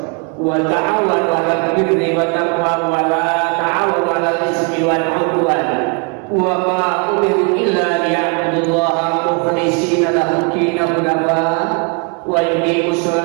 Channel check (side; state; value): left; quieter; 34.0 dB